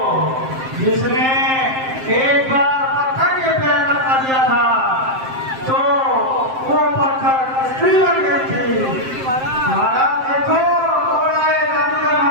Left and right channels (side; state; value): left; late; 7.6 ms